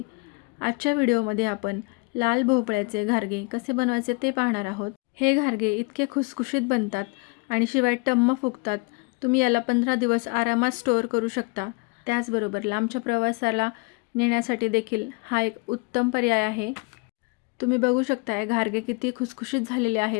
आजच्या व्हिडिओमध्ये आपण लाल भोपळ्याचे घारगे कसे बनवायचे ते पाहणार आहोत. हे घारगे इतके खुसखुशीत बनतात आणि शिवाय टम्म फुगतात. तुम्ही याला 15 दिवस आरामात स्टोअर करू शकता. त्याचबरोबर लांबच्या प्रवासाला नेण्यासाठी देखील हा एक उत्तम पर्याय आहे. तुम्ही बघू शकता घारगे किती खुसखुशीत झालेले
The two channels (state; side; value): quieter; right; 28.6 dB